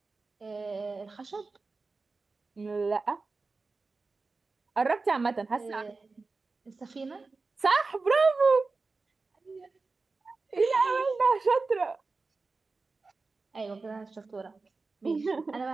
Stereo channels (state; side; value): quieter; left; 3.9 dB